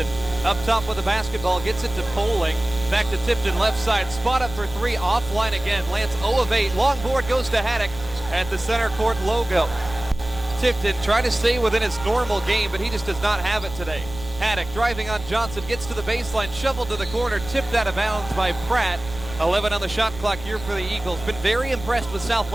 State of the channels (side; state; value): right; noise; rumble, 13 dB below the sound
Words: up top with the basketball, gets it to Poling. Back to Tipton, left side, spot up for 3, offline again. Lance 0 of 8. Long board goes to Haddock at the center court logo. Tipton trying to stay within his normal game, but he just does not have it today. Haddock driving on Johnson, gets to the baseline, shoveled to the corner, tipped out of bounds by Pratt. 11 on the shot clock here for the Eagles. Been very impressed with